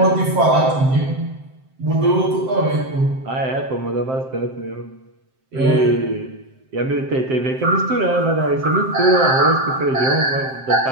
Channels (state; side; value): late; left; 7.7 ms